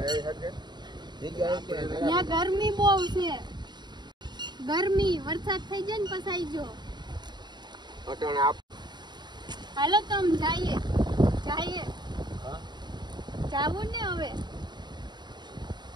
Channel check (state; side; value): late; left; 0.21 ms